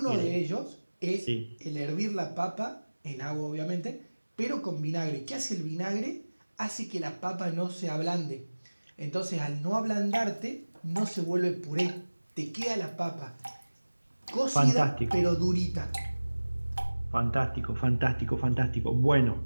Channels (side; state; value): both; inverted; correlation -1.00